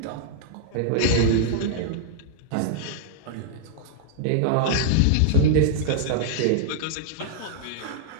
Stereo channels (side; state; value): both; different; correlation -0.01